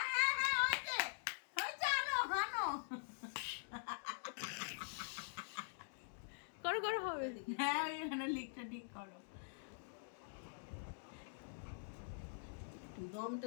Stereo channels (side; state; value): right; silent; digital silence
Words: করো করো হবে। হ্যাঁ ওইখানে লিখটা ঠিক করো। দমটা